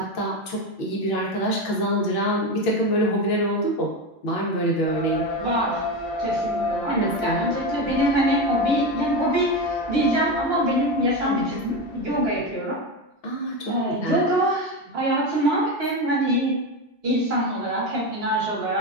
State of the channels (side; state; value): both; normal; correlation 0.17